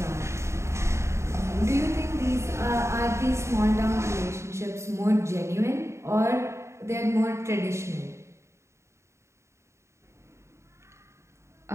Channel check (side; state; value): left; late; 0.14 ms